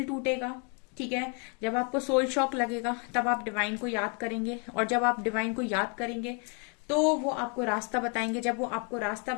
टूटेगा, ठीक है, जब आपको सोल शॉक लगेगा, तब आप डिवाइन को याद करेंगे, और जब आप डिवाइन को याद करेंगे तो वो आपको रास्ता बताएंगे। जब वो आपको रास्ता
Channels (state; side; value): quieter; right; 37.1 dB